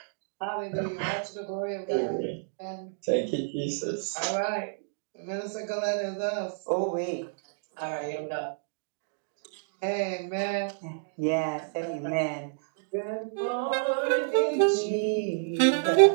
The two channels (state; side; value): silent; left; digital silence